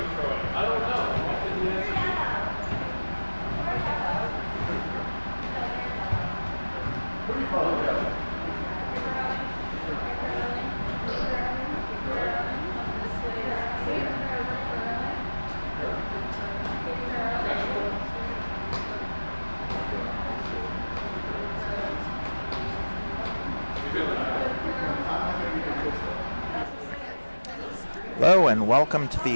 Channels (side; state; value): both; inverted; correlation -1.00